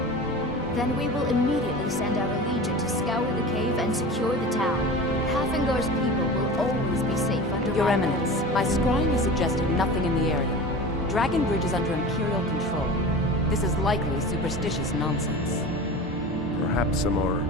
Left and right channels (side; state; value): both; normal; correlation 0.34